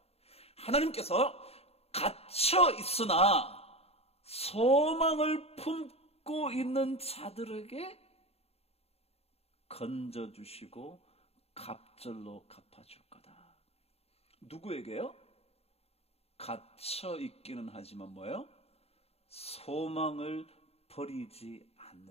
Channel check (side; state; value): right; late; 0.29 ms